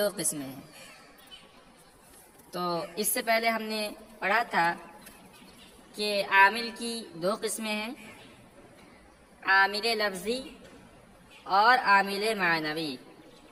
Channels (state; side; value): identical; both; correlation 1.00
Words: قسمیں ہیں۔ تو اس سے پہلے ہم نے پڑھا تھا کہ عامل کی دو قسمیں ہیں، عامل لفظی اور عامل معنوی۔